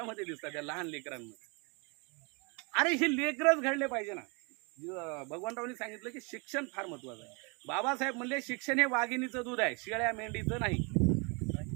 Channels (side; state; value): left; quieter; 31.6 dB